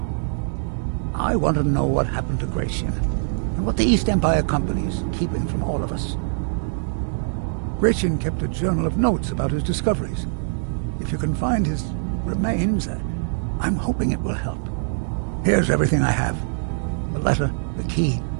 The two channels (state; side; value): silent; left; digital silence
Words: I want to know what happened to Gratian, and what the East Empire Company is keeping from all of us. Gratian kept a journal of notes about his discoveries. If you can find his remains, I'm hoping it will help. Here's everything I have. The letter, the key.